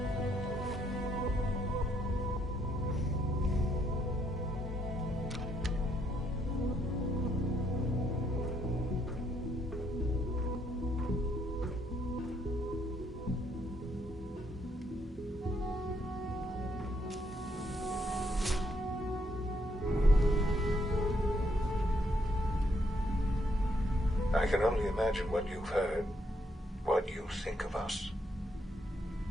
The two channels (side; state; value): both; normal; correlation 0.73